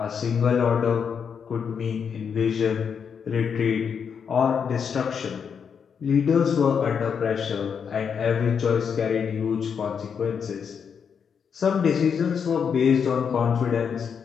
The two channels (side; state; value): right; quieter; 6.8 dB